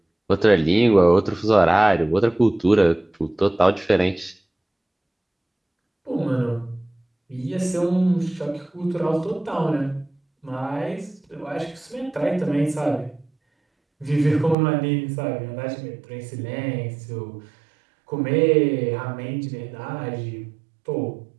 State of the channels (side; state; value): left; drops out; at 14.6 s